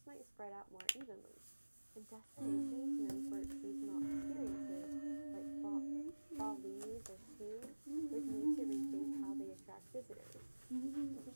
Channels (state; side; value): inverted; both; correlation -1.00